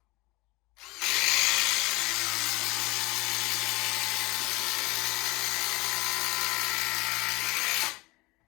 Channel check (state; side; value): quieter; right; 22.9 dB